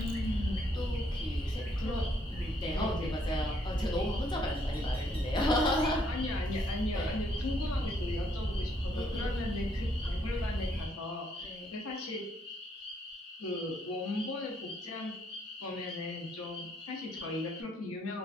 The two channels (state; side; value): normal; both; correlation 0.70